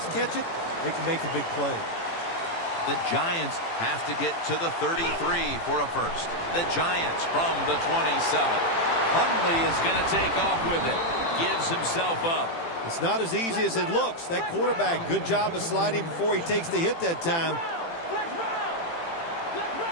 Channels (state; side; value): late; right; 18 ms